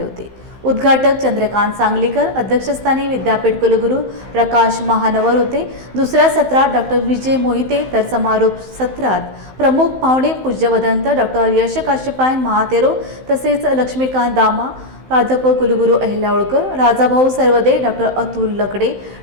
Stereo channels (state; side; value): late; left; 15 ms